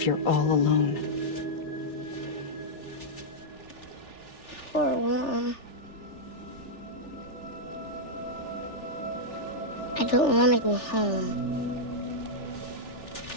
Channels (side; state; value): right; late; 3.4 ms